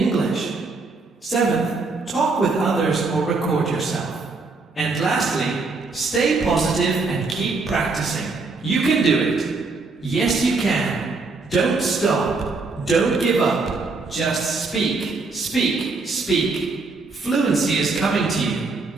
Seventh, talk with others or record yourself. And lastly, stay positive and keep practicing. You can do it. Yes, you can. Don't stop. Don't give up. Just speak, speak, speak. Fluency is coming to you.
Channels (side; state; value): left; quieter; 3.9 dB